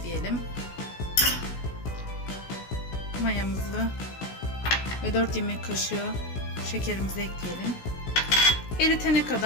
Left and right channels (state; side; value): late; right; 16 ms